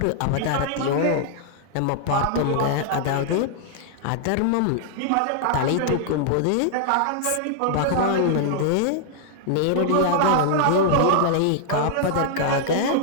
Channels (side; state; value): both; different; correlation -0.01